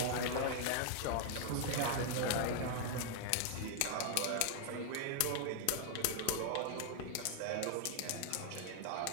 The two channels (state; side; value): different; both; correlation 0.00